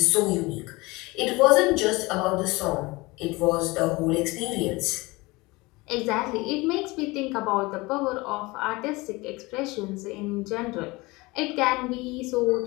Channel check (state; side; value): quieter; right; 22.8 dB